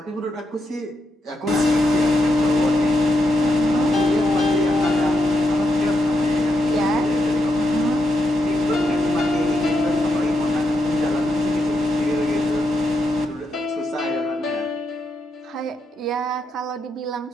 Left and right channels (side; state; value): both; normal; correlation 0.83